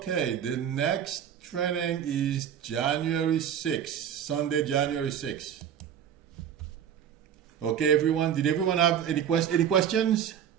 the next training is January 6th, Sunday, January 6th. Okay, everyone. Did everyone have any questions?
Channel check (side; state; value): left; quieter; 9.1 dB